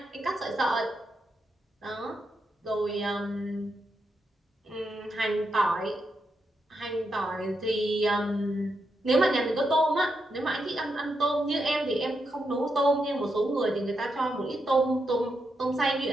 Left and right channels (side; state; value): both; normal; correlation 0.83